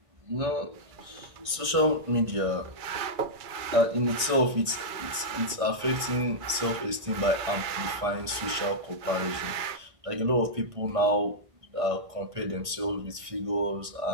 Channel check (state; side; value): late; left; 1.6 ms